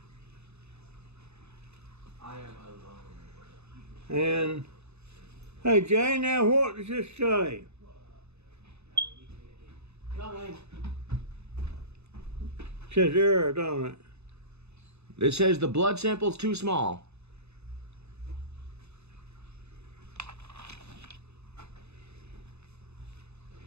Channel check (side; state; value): left; late; 0.80 ms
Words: I am alone. And, hey, Jay, now what does this say? Coming. Says error, don't it? It says the blood sample's too small.